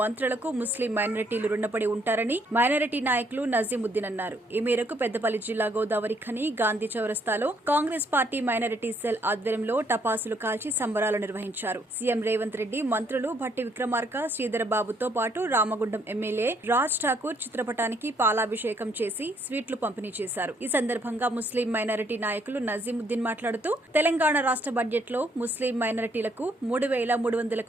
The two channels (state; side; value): normal; both; correlation 0.69